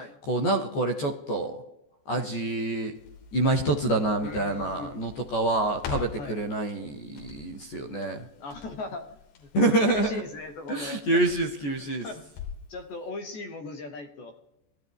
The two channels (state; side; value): late; right; 14 ms